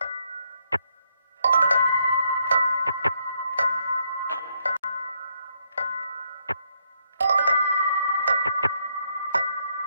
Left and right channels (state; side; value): inverted; both; correlation -0.75